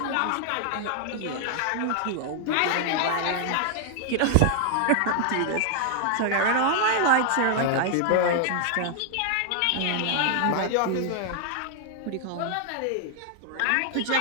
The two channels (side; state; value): both; different; correlation 0.00